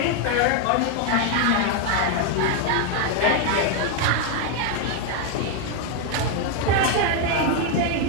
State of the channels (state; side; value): different; both; correlation 0.01